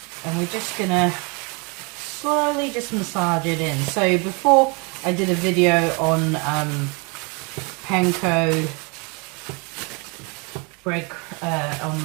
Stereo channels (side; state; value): left; quieter; 31.2 dB